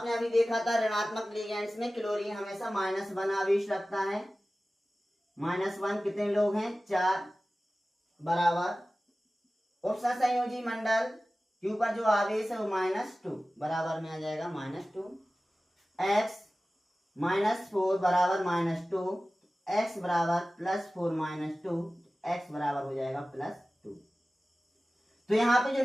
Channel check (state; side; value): normal; both; correlation 0.96